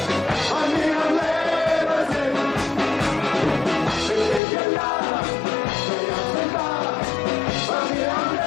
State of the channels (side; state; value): right; drops out; at 4.4 s